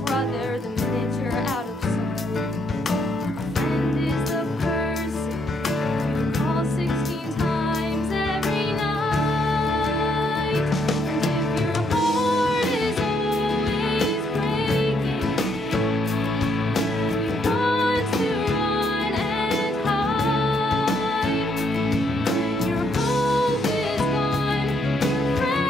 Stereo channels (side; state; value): both; normal; correlation 0.73